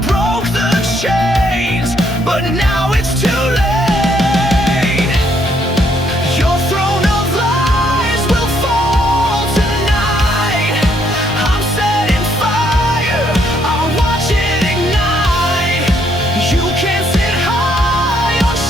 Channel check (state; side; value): normal; both; correlation 0.70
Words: but now it's too late. Your throne of lies will fall tonight. I'm setting fire, I'll watch it ignite. You can't sit high on